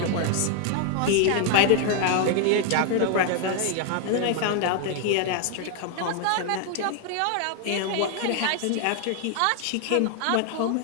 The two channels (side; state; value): both; different; correlation 0.00